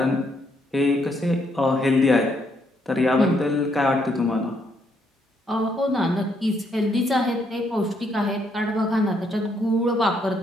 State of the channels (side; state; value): both; normal; correlation 0.73